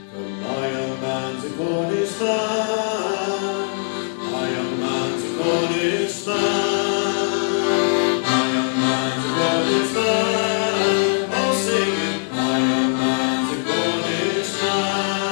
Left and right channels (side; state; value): right; silent; digital silence